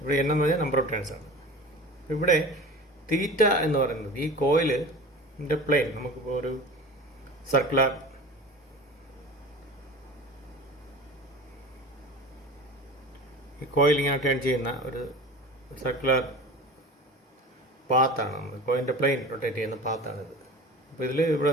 n എന്ന് പറഞ്ഞാൽ നമ്പർ ഓഫ് ടേൺസ് ആണ്. ഇവിടെ തീറ്റ എന്ന് പറയുന്നത് ഈ കോയിലിൻ്റെ പ്ലെയിൻ, നമുക്കിപ്പോൾ ഒരു സർക്കുലർ ഈ കോയിൽ ഇങ്ങനെ ടേൺ ചെയ്യുന്ന ഒരു സർക്കുലർ പാത്താണ്. കോയിലിൻ്റെ പ്ലെയിൻ റൊട്ടേറ്റ് ചെയ്യുന്ന പാത്താണിത്. അപ്പോൾ ഇതിൽ ഇവിടെ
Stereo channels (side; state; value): both; normal; correlation 0.35